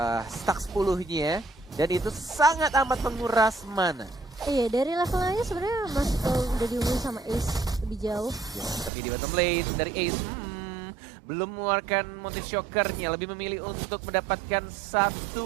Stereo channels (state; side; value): drops out; left; at 8.9 s